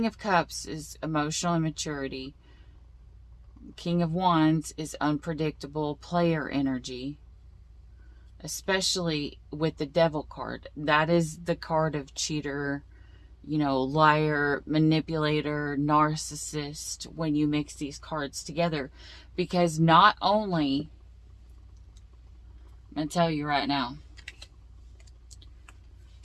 of Cups is emotional immaturity. King of Wands is unpredictable player energy. Especially with the Devil card. That is the card of cheater, liar, manipulator, narcissist, when you mix these cards together. Because not only, I'm going to tell you right now,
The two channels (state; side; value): identical; both; correlation 1.00